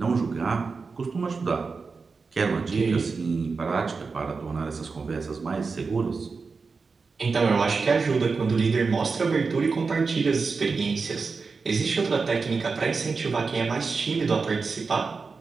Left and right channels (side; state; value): left; quieter; 4.6 dB